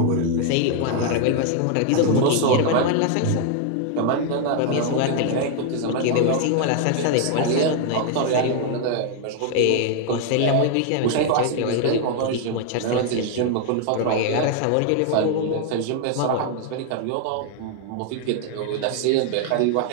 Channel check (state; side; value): different; both; correlation 0.00